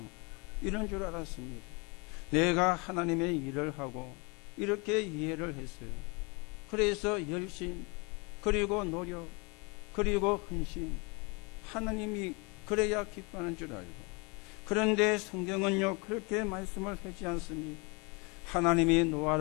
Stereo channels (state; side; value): quieter; right; 29.8 dB